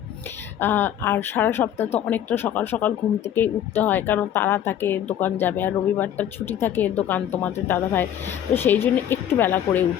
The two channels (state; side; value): quieter; right; 10.3 dB